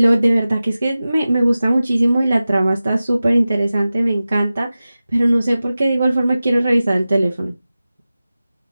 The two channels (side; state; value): both; inverted; correlation -0.95